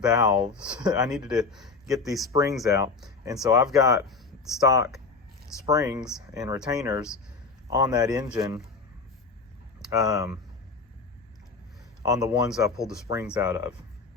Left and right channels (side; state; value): right; quieter; 4.3 dB